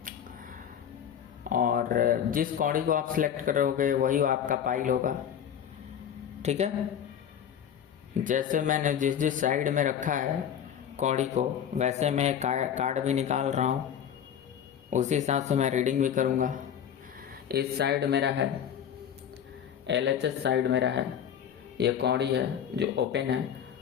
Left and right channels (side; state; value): right; quieter; 8.9 dB